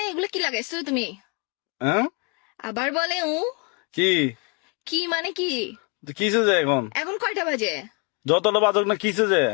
এগুলো কি লাগাইছো তুমি? হ্যাঁ। আবার বলে কি কি মানে কি? কিসে যে এখন এখন কয়টা বাজে? যতটা বাজক না কিসে যে।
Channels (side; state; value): right; quieter; 33.9 dB